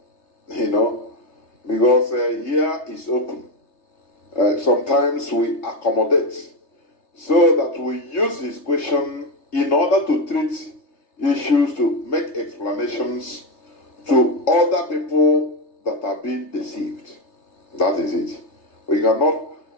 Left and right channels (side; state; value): right; late; 3.3 ms